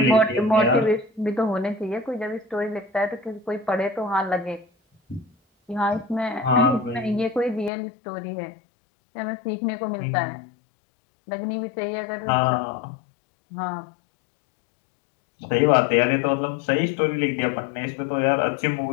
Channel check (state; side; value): drops out; right; at 7.7 s